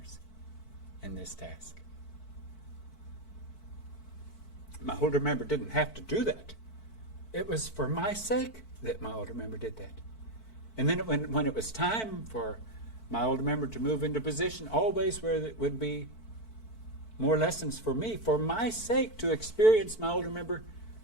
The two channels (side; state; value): right; late; 4.5 ms